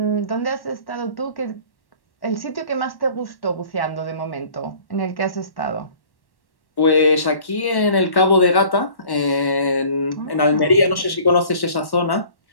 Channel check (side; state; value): right; late; 1.1 ms